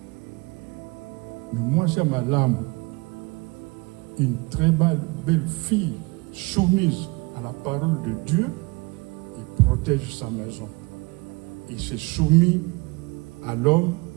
Mais moi, c'est ma lame, une très belle fille soumise à la parole de Dieu et protège sa maison. Et c'est soumis à l'homme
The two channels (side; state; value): left; quieter; 26.9 dB